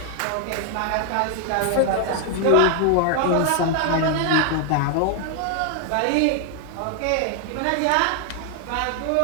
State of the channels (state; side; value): different; both; correlation 0.00